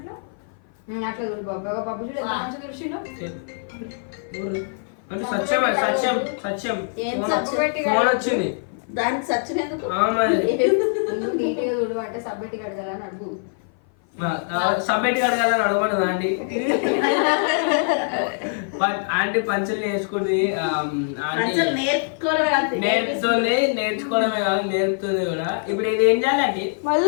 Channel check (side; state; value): right; silent; 56 dB below the other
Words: అట్లా చూడు బాబు. బాబు చూడు ఎంత మంచిగా చూసిండు. అంటే సత్యం సత్యం సత్యం ఏం ఫోన్ వచ్చింది దానికి సత్యం ఎందుకు? నీట్గా చూడు అంటే సబ్బెట్టి కడగాలని అడుగు. సబ్మిట్ కడగాలని అడగమని ఆంటీ. ఆంటీ పంచలు నేర్చుకుంది. నేర్చుకోవడమే కాదు నేర్పుతుంది కూడా. ఇప్పుడు ఇది ఏం చేయాలండి?